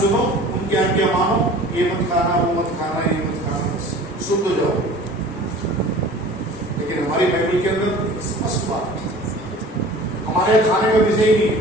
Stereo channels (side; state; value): both; normal; correlation 0.43